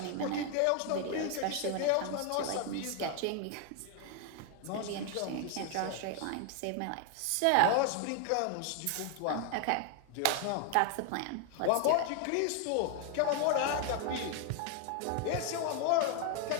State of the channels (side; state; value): both; different; correlation 0.00